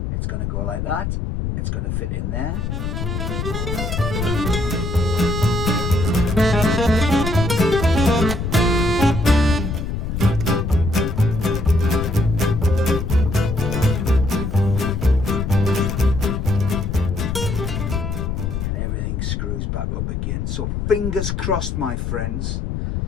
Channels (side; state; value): left; noise; rumble, 2 dB below the sound